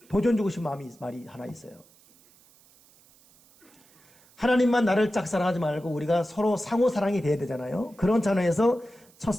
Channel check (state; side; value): noise; right; hiss, 29 dB below the sound